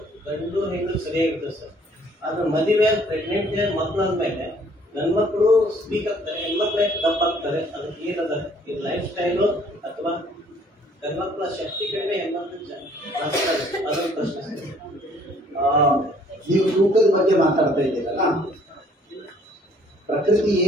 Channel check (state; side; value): normal; both; correlation 0.60